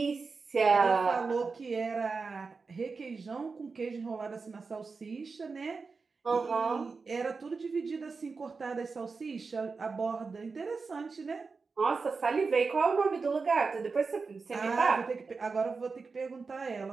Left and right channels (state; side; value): quieter; left; 4.6 dB